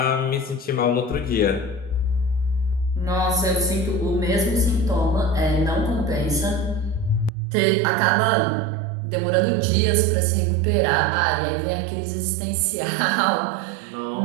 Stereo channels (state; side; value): drops out; left; at 7.3 s